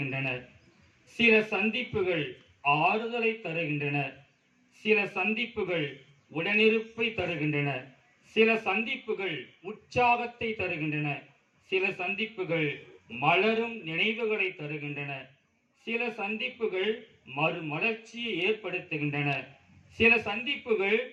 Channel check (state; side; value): identical; both; correlation 1.00